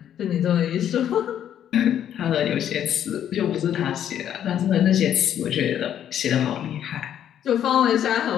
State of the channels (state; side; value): quieter; right; 10.1 dB